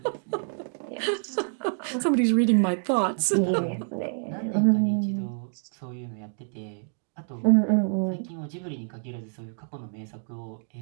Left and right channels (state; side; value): silent; left; digital silence